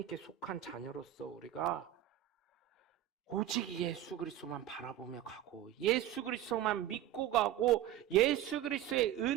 속한 자녀로서 우리가 오직 예수 그리스도만 바라보며 가고 예수 그리스도만 믿고 가고 예수 그리스도의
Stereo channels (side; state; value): left; quieter; 12.4 dB